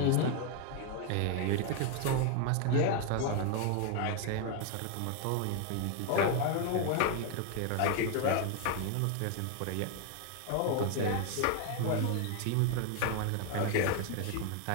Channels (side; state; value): both; different; correlation 0.00